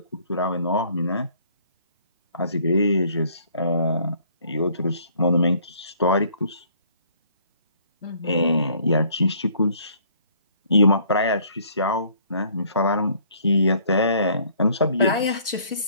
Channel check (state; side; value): inverted; both; correlation -0.60